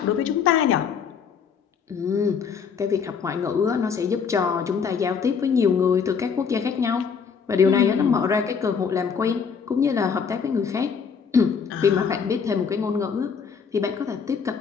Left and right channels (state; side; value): quieter; right; 6.3 dB